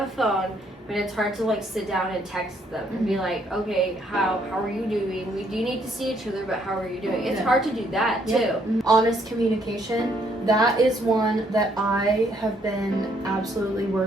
phone, but it's hard to like sit down and text them and be like, okay, how are you doing? We do need to see each other, but how are you doing? It's hard to do that too. Honest communication, that is one that I have been absolutely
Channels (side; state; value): both; normal; correlation 0.69